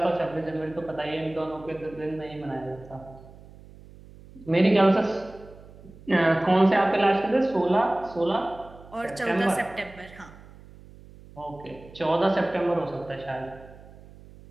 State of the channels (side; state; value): right; noise; hum, 20 dB below the sound